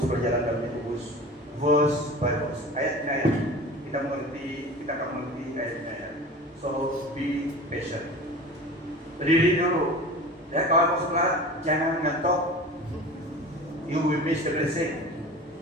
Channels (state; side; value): normal; both; correlation 0.36